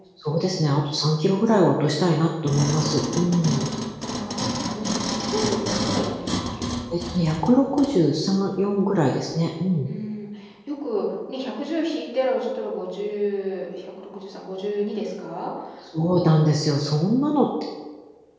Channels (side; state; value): both; identical; correlation 1.00